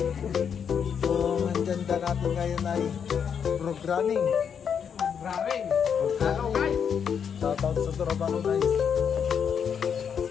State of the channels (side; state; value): right; quieter; 7.4 dB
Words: So ang agenda natin ngayon ay programming. Hello guys! Shoutout sa Torabano guys.